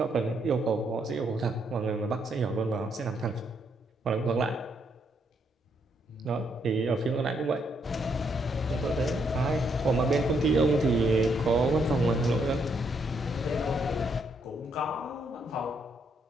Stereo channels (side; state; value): both; normal; correlation 0.74